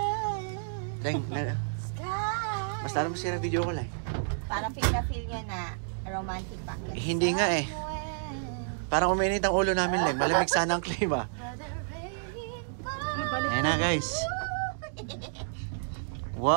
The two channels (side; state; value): left; silent; digital silence